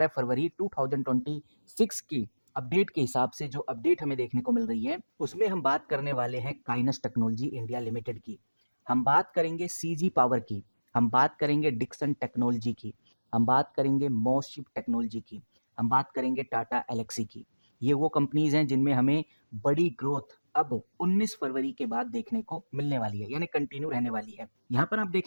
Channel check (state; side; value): inverted; both; correlation -1.00